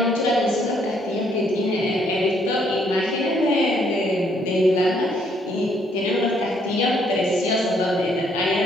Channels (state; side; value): normal; both; correlation 0.68